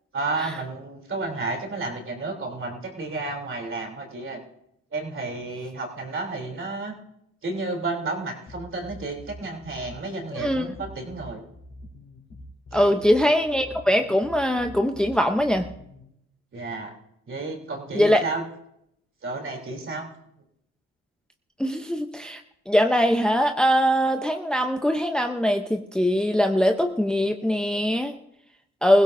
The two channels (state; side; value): normal; both; correlation 0.79